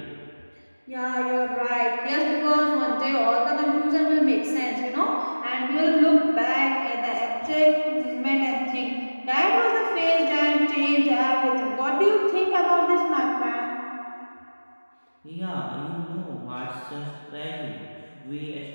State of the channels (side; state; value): both; inverted; correlation -1.00